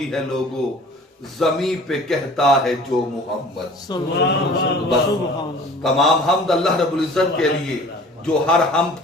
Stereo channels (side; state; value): both; normal; correlation 0.46